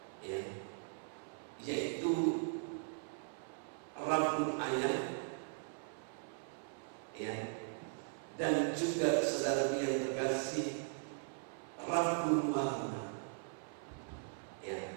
ya, yaitu rambut ayam, ya, dan juga saudara yang terkasih rambut warna, ya,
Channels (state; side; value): silent; left; 52 dB below the other